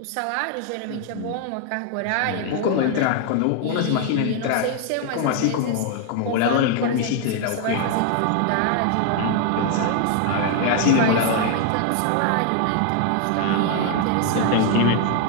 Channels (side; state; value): both; different; correlation 0.00